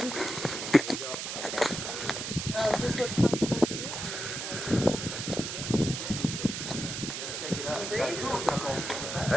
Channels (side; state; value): right; noise; hiss, 5 dB below the sound